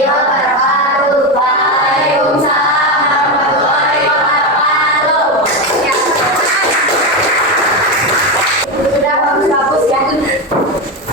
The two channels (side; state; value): both; normal; correlation 0.13